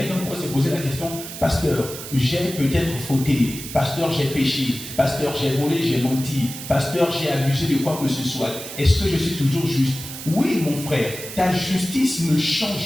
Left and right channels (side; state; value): right; noise; hiss, 10 dB below the sound